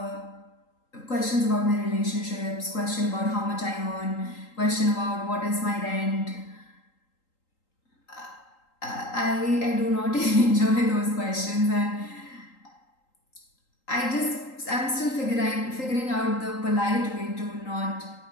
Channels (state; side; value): late; right; 3.8 ms